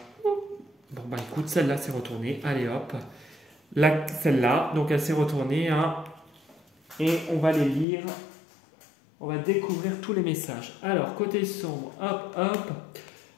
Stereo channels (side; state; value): right; drops out; at 7.9 s